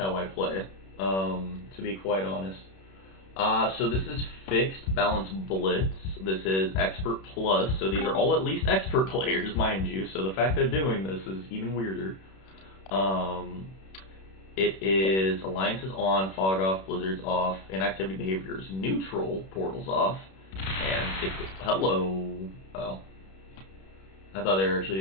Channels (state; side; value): late; right; 31 ms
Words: I play, to be quite honest. So this is fixed, balance, blitz. This is expert plus, so these are all at least expert players, mind you, so the fact they're doing this is even weirder. It is alliances on, fog off, blizzards off, inactivity behaviors neutral, portals off, and hello. Oh. I thought they were actually